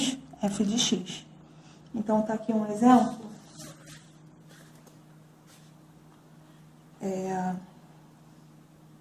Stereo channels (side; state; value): both; identical; correlation 1.00